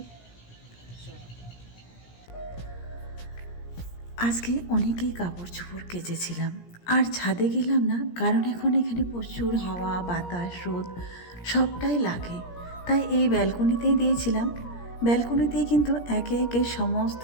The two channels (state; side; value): late; right; 17 ms